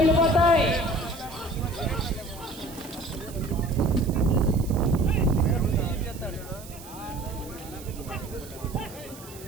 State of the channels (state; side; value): noise; right; hiss, 18 dB below the sound